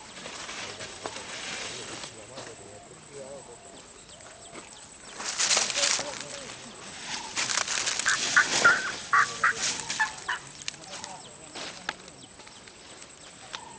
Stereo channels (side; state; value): both; identical; correlation 1.00